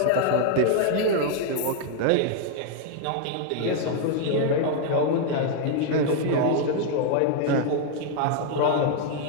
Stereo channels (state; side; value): different; both; correlation 0.00